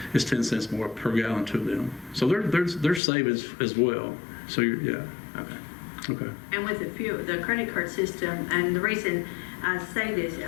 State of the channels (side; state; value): right; drops out; at 3.0 s